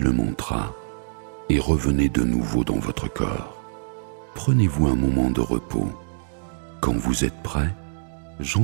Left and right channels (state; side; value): silent; left; digital silence